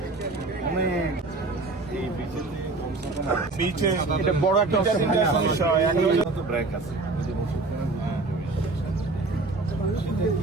অনেক এই বিচে এটা বড় একটা ব্রেক আছে সেটা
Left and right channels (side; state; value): left; quieter; 3.4 dB